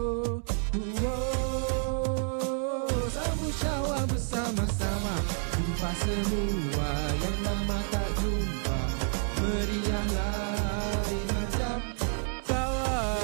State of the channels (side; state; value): left; silent; 57 dB below the other